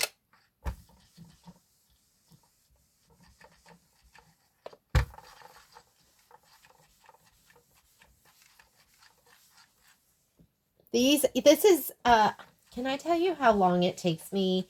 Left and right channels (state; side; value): identical; both; correlation 1.00